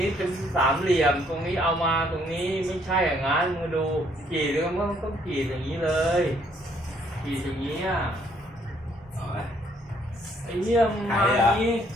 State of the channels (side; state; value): both; normal; correlation 0.66